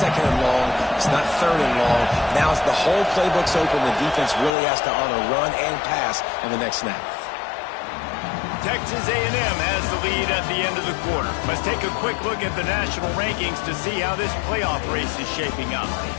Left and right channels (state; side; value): drops out; right; at 4.5 s